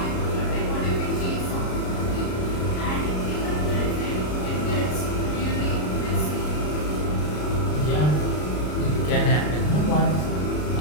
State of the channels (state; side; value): late; right; 33 ms